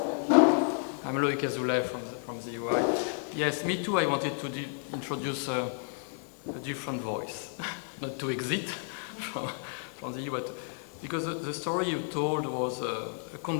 I'm Loïc Azoulay from the UI. Yes, me too. I wanted to introduce a different voice, not to exit from the EU, but because the story you told was a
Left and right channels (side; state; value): right; silent; 57 dB below the other